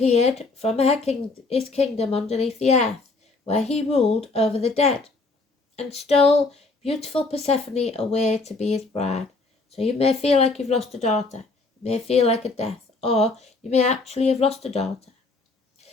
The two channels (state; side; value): quieter; right; 3.7 dB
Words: from his kingdom underneath the earth, where he ruled over the dead, and stole beautiful Persephone away to be his bride. So you may feel like you've lost a daughter, it may feel like a death, or you may actually have lost a daughter.